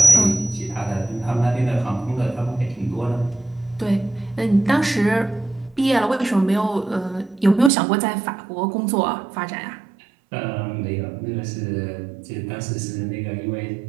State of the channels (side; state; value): left; drops out; at 7.7 s